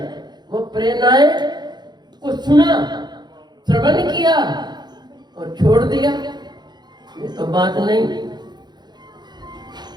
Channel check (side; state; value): left; late; 0.21 ms